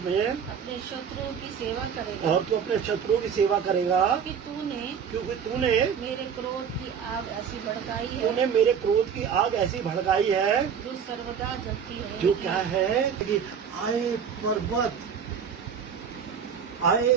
अपने शत्रुओं की सेवा करेगा, और तू अपने शत्रुओं की सेवा करेगा, क्योंकि तूने मेरे क्रोध की आग ऐसी भड़काई है, जो सर्वदा जलती है। जो क्या है कि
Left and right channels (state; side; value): quieter; left; 7.3 dB